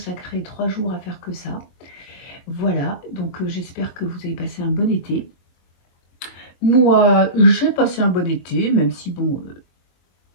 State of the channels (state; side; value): late; right; 23 ms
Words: 3 jours à faire que ça. Voilà, donc j'espère que vous avez passé un bon été. Moi, j'ai passé un bon été, même si, bon,